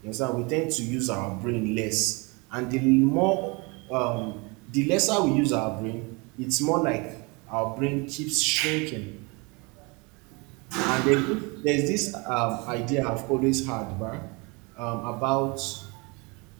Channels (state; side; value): quieter; left; 28.5 dB